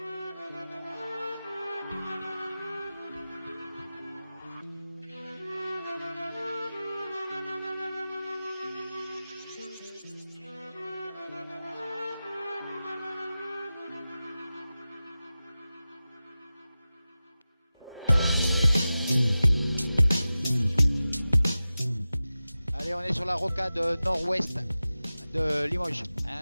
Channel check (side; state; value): both; inverted; correlation -0.95